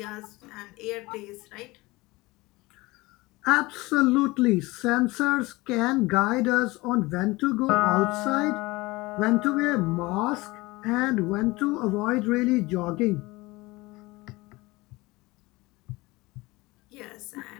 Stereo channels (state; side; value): quieter; right; 21.7 dB